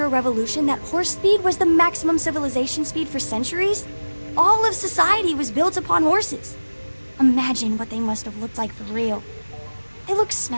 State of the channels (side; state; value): both; inverted; correlation -1.00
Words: Revolution that horse speed was the maximum civilization speed for centuries? All of society was built upon horses. Imagine what they must have looked like for real. They look